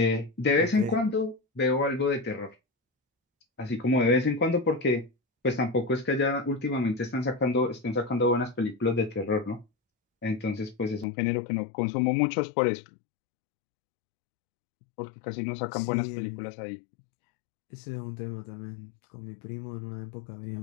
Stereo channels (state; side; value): drops out; right; at 11.1 s